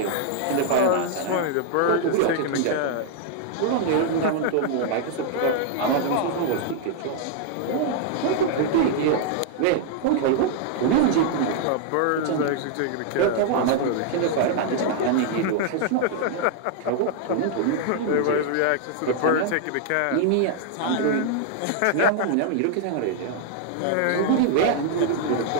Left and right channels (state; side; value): different; both; correlation 0.00